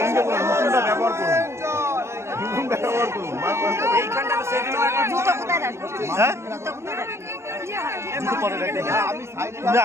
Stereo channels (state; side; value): late; left; 0.13 ms